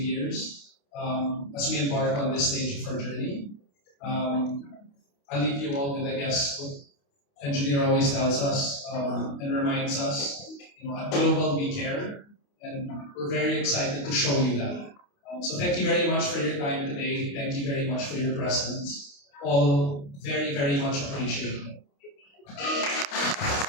as we embark on this stage of our journey. I'll leave you all with, I guess, what Engineer always tells us and reminds us, at Global we care, and we're very excited to show you that. So thank you very much for your time today. Thank you very much for your presence. All very, very much appreciated.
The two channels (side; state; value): right; late; 28 ms